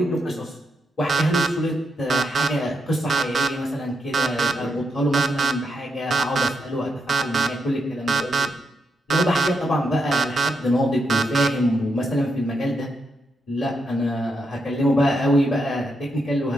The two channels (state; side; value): normal; both; correlation 0.82